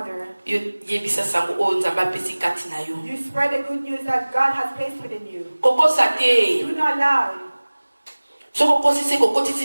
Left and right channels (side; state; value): both; inverted; correlation -1.00